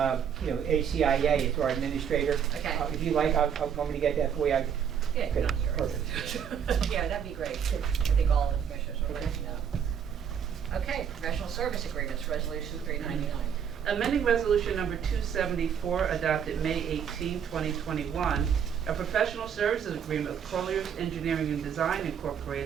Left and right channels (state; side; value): quieter; left; 8.0 dB